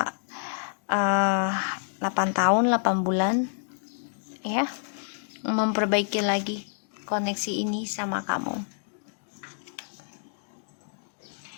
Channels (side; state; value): right; silent; digital silence